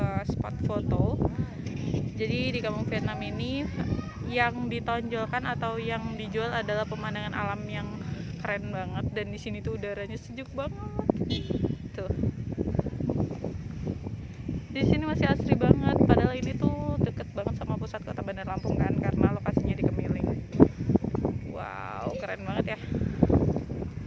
spot foto. Jadi di Kampung Vietnam ini yang ditonjolkan atau yang dijual adalah pemandangan alam yang keren banget, dan di sini tuh udaranya sejuk banget. Tuh. Di sini masih asri banget, padahal ini tuh deket banget sama pusat kota Bandar Lampung kan, karena lokasinya di Kemiling. Wow, keren banget ya.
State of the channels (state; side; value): identical; both; correlation 1.00